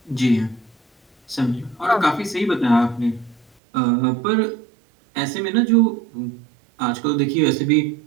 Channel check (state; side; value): drops out; left; at 3.5 s